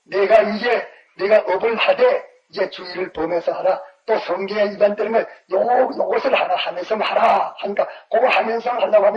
내가 업을 하되 이제 주의를 범해서 하라. 또 성경에 위반되는 걸 요것을 하나 하면서 하라 하니까 그거 하면서 하려고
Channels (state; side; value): identical; both; correlation 1.00